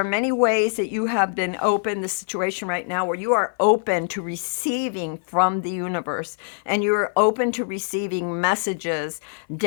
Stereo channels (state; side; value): silent; right; 56 dB below the other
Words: many ways that you have been open, the situation right now where you are open to receiving from the universe, and you're open to receiving messages,